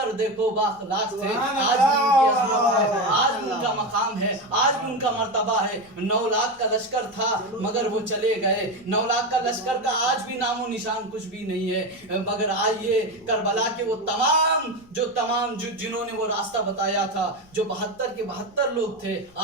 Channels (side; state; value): left; noise; hum, 30 dB below the sound